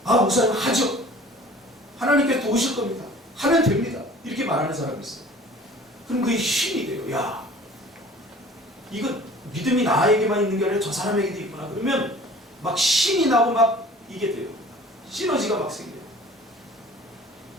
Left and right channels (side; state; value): both; normal; correlation 0.47